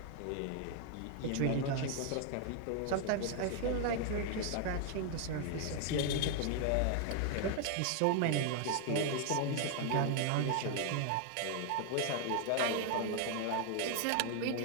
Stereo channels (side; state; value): both; different; correlation 0.00